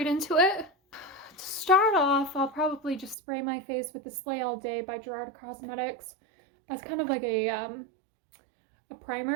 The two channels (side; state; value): left; drops out; at 3.2 s